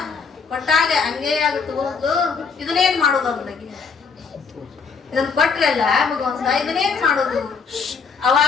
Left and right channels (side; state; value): right; quieter; 5.4 dB